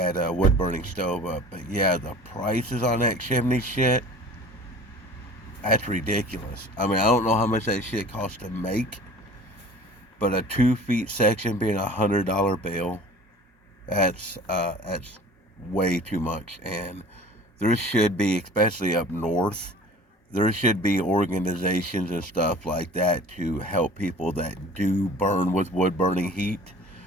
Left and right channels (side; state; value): both; normal; correlation 0.44